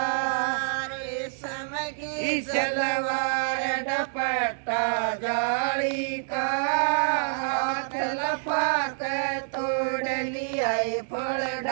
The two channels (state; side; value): silent; left; 60 dB below the other